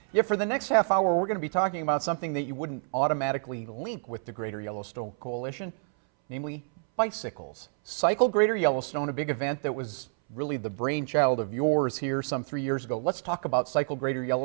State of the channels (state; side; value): silent; left; 59 dB below the other